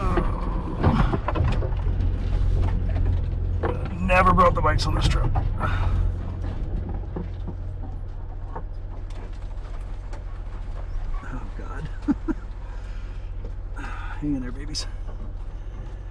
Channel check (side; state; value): both; identical; correlation 1.00